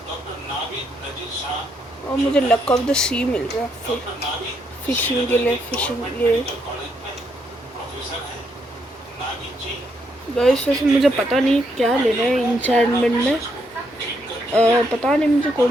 और मुझे लक ऑफ द सी मिल रहा है फिशिंग के लिए। गाइस वैसे मुझे पता नहीं क्या लेना है इंचार्टमेंट में, पता नहीं मुझे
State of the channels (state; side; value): normal; both; correlation 0.76